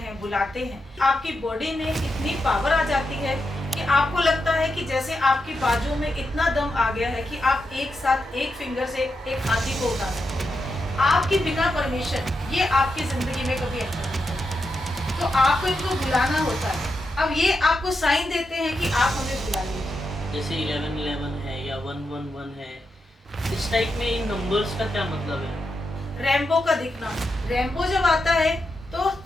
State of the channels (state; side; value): normal; both; correlation 0.86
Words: बुलाते हैं, आपकी बॉडी में इतनी पावर आ जाती है कि आपको लगता है कि जैसे आपकी बाजू में इतना दम आ गया है कि आप एक साथ एक फिंगर से एक हाथी को उठा सकते हैं। आपकी बिना परमिशन ये आपकी जिंदगी में कभी एंटर नहीं करते, तो आपको इनको बुलाना होता है। अब ये आपको साइन देते हैं कि आप हमें बुला लीजिए। जैसे 1111 है या 111 है, इस टाइप में इन नंबर्स का क्या मतलब है? रैम्बो का दिखना, रैम्बो जब आता है तो